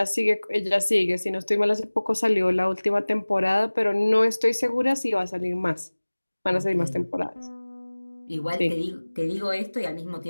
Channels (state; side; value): inverted; both; correlation -1.00